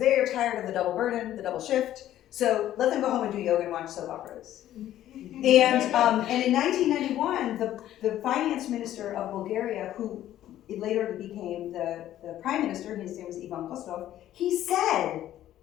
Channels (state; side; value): quieter; right; 12.6 dB